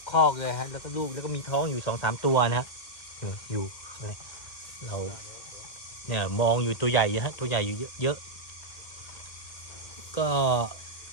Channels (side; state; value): right; late; 2.1 ms